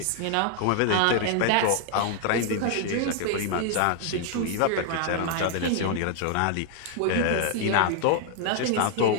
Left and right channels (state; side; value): different; both; correlation 0.00